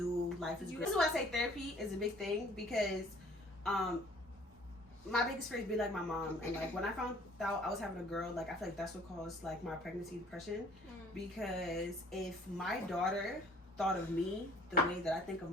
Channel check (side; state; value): both; normal; correlation 0.56